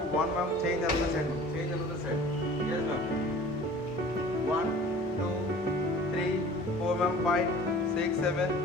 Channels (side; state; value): both; normal; correlation 0.45